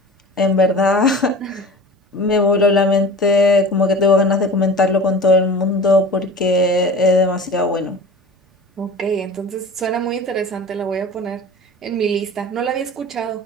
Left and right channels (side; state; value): both; normal; correlation 0.38